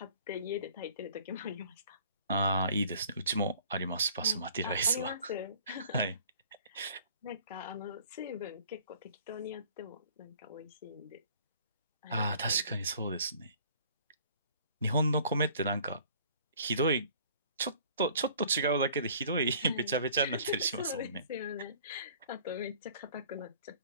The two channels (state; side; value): inverted; both; correlation -0.52